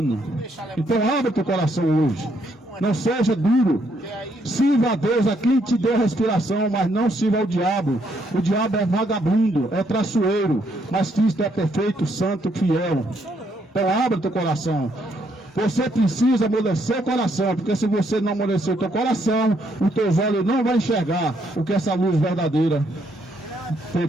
Então abre teu coração hoje. Não seja duro. Sirva a Deus, a quem te deu respiração, mas não sirva ao diabo. O diabo é vagabundo, é traiçoeiro, mas Cristo é perfeito, santo, fiel. Então abre teu coração. Você precisa amolecer o coração, porque se você não amolecer o teu coração, os teus olhos não vão enxergar o que essa luz verdadeira tem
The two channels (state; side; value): normal; both; correlation 0.73